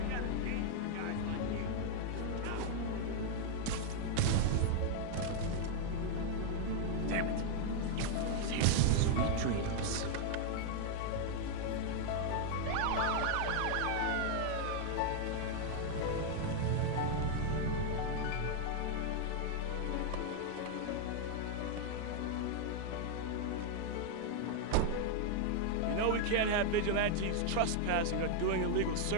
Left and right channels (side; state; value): both; different; correlation 0.00